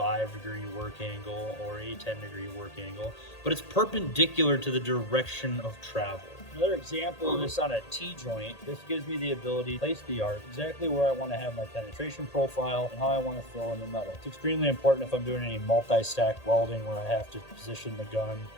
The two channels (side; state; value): right; late; 1.8 ms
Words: work angle or a 10-degree work angle, but it's perpendicular to the direction of travel. Another example of this on a T-joint, this gives me the ability to place the arc exactly where I want to have my penetration profile and how I want to fill in the metal. It's extremely important if I'm doing any multi-stack welding where I have to position the gun